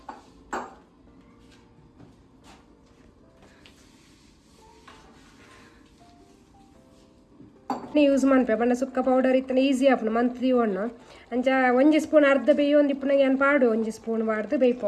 ಯೂಸ್ ಮಾಡ್ಪೆ ಬಣ್ಣ ಸುಕ್ಕ ಪೌಡರ್ ಇತ್ತನ ಈಸಿ ಆಪುನ ಮಂತ್ ದಿವಣ್ಣ ಅಂಚ ಒಂಜಿ ಸ್ಪೂನ್ ಅರ್ಧ ಬೇಯಿ ಒಂದು ಇಪ್ಪನಾಗ ಏನು ಪಾಡು ಒಂಜಿ ಸ್ಪೂನ್ ಬಾರ್ದು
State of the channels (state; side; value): identical; both; correlation 1.00